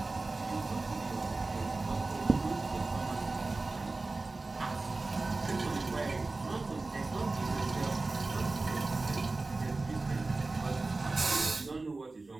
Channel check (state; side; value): quieter; left; 3.4 dB